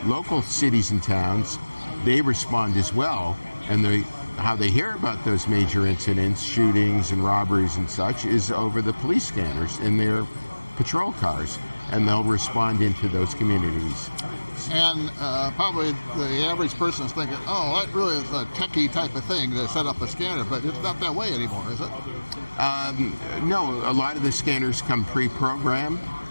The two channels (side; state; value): both; inverted; correlation -1.00